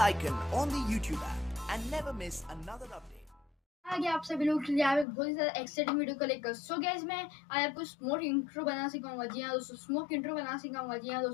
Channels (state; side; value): drops out; right; at 5.1 s